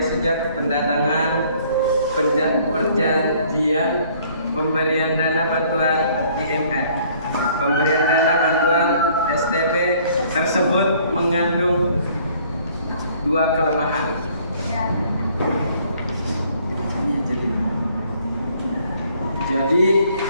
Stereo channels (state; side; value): inverted; both; correlation -0.60